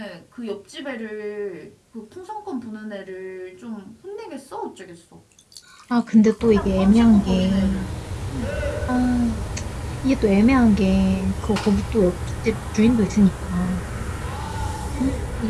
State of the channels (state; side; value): identical; both; correlation 1.00